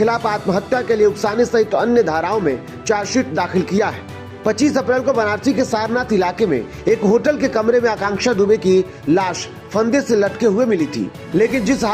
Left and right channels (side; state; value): both; identical; correlation 1.00